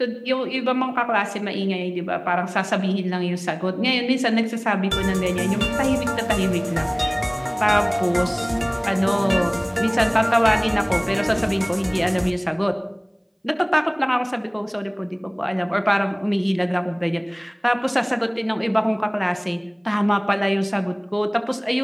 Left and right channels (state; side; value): identical; both; correlation 1.00